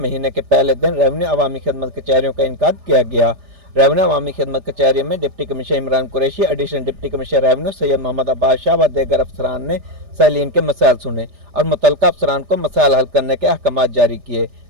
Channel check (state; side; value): late; left; 3.3 ms